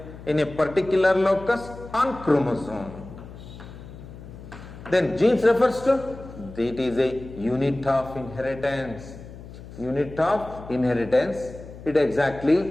in a particular locus on chromosome. Then genes refers to, it is a unit of inheritance. Unit of inheritance, it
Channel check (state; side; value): noise; left; hum, 15 dB below the sound